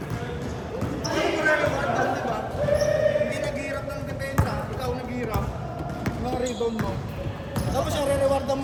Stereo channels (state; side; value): identical; both; correlation 1.00